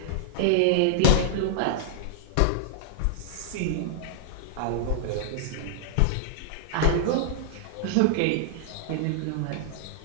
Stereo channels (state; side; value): different; both; correlation -0.01